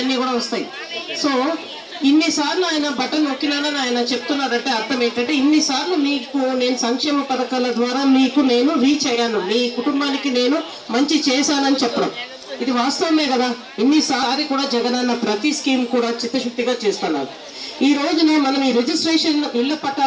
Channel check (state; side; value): identical; both; correlation 1.00